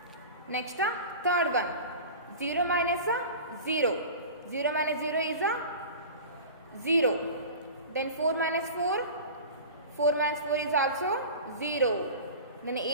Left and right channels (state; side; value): inverted; both; correlation -0.35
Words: Next third one. 0 minus 0. 0 minus 0 is 0. Then 4 minus 4. 4 minus 4 is also 0. Then